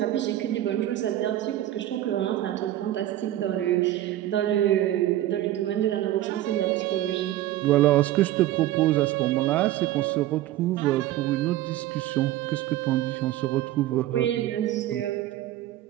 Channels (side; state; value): left; quieter; 14.1 dB